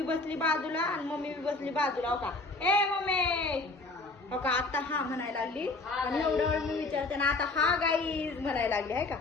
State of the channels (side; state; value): right; quieter; 3.3 dB